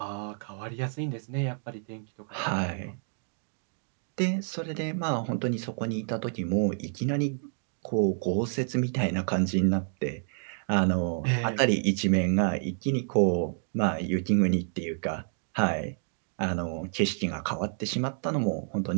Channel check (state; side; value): silent; left; digital silence